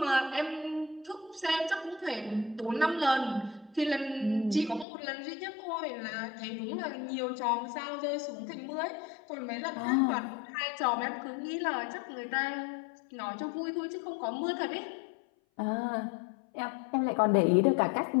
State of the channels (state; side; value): drops out; right; at 4.9 s